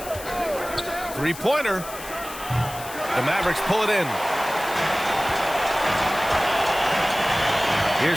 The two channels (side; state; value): left; noise; hiss, 13 dB below the sound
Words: Three-pointer. The Mavericks pull it in.